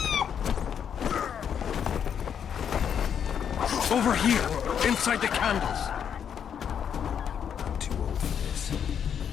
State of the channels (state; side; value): quieter; right; 8.1 dB